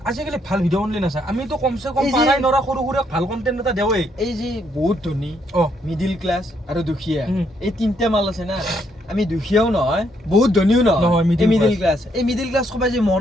আজিকালি ভাল ভিডিঅ' বনালে নাচায়। আমিতো কমচে কম পাৰাই নৰা সৰু সুৰা ভাল কণ্টেণ্ট এটা দেওৱেই। এই যে বহুত ধনী, মিডিল ক্লাছ আৰু দুখীয়া, এই তিনিটা মাল আছে না। আমি দুখীয়াও নহয়, বহুত ধনীও নহয়, মিডিল ক্লাছ। এই মিডিল ক্লাছ সবাই যে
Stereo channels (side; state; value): both; normal; correlation 0.73